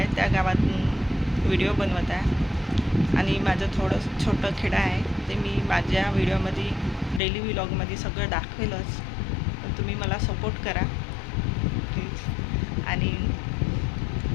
त्या गावातून व्हिडिओ बनवत आहे. आणि माझं थोडं छोटं खेडं आहे, ते मी माझ्या व्हिडिओमध्ये डेली व्लॉगमध्ये सगळं दाखवेलच. पण तुम्ही मला सपोर्ट करा प्लीज. आणि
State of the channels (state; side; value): drops out; right; at 7.2 s